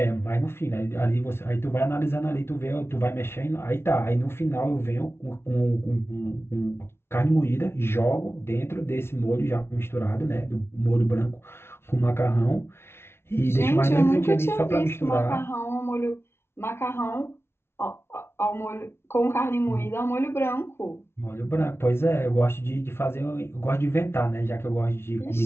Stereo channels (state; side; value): late; right; 0.12 ms